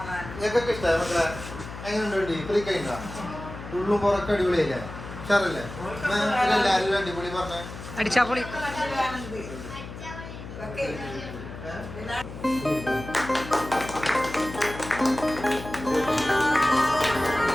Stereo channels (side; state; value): left; noise; hum, 11 dB below the sound